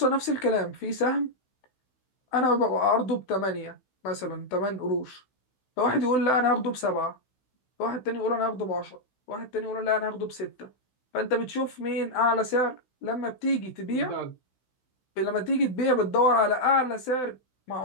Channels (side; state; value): right; late; 16 ms